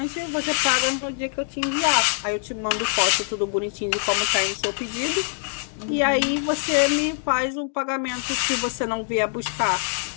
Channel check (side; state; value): right; silent; 63 dB below the other